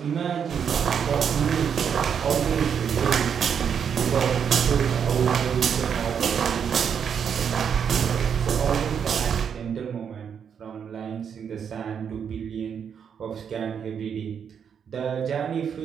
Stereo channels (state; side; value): quieter; left; 7.5 dB